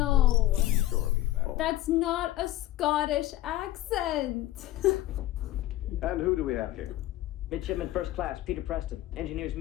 Surely. That's not a Scottish accent. And who do we have here? Midshipman First Class, Peter Preston, engineer's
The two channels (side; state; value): right; quieter; 15.0 dB